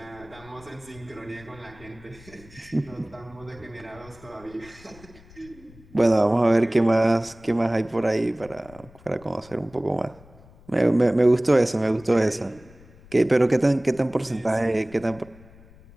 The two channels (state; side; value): noise; left; rumble, 23 dB below the sound